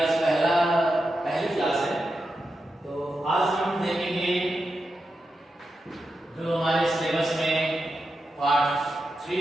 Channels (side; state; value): both; normal; correlation 0.89